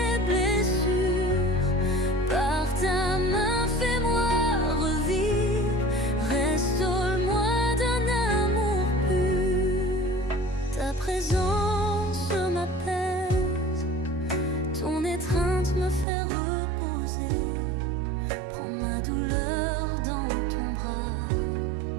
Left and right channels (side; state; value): left; drops out; at 16.1 s